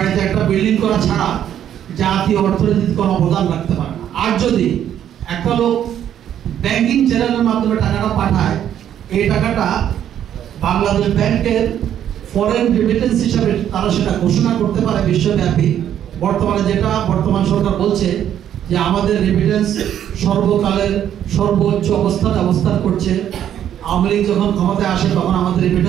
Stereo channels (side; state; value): left; quieter; 10.3 dB